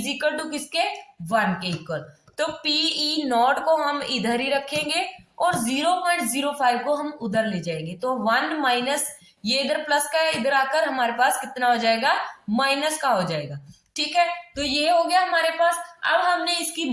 इक्वल टू किसके? 1 के इक्वल। तो पीई नॉट को हम इधर ही रखेंगे और 0.05 को हम उधर ले जाएंगे। तो 1 माइनस, ये इधर प्लस का है, इधर आकर हमारे पास कितना हो जाएगा? माइनस का हो जाएगा। ठीक है, तो ये हो गया हमारे पास। अब हमने इसकी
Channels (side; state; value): both; identical; correlation 1.00